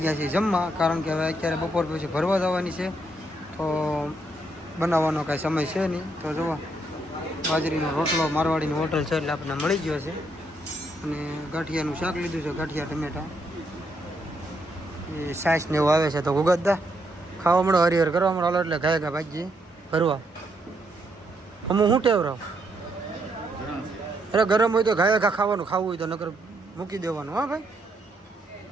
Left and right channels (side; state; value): both; normal; correlation 0.76